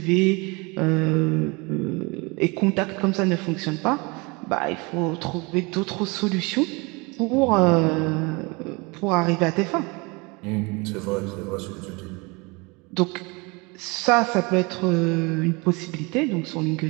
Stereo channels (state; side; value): quieter; left; 27.2 dB